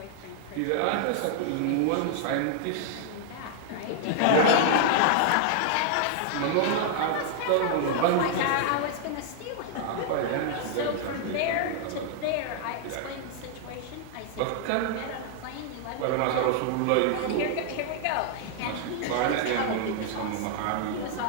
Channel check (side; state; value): both; different; correlation 0.00